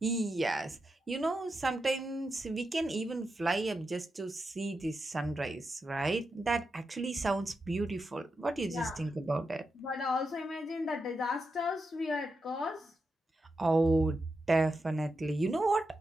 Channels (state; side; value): normal; both; correlation 0.87